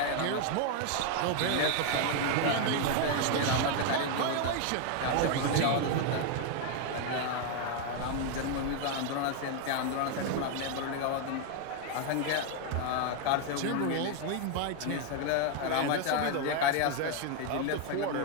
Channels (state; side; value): different; both; correlation 0.01